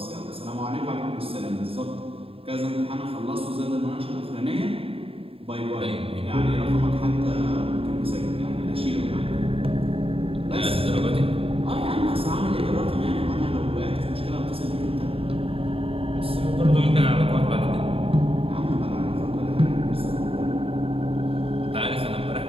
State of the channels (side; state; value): left; late; 0.27 ms